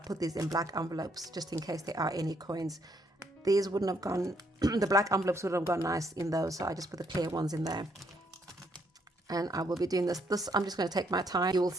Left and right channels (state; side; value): normal; both; correlation 0.71